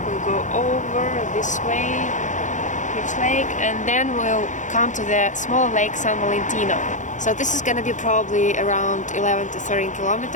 We'll go over this way, huge lake, and then we'll come to the small lake San Valentino. So this is gonna be probably around 11 to 13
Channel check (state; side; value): late; right; 0.36 ms